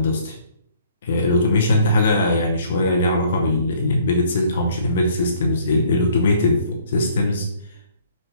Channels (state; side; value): inverted; both; correlation -0.60